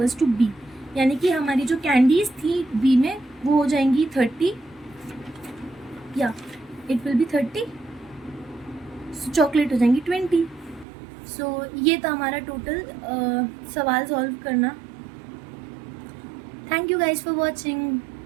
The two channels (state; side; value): drops out; left; at 10.9 s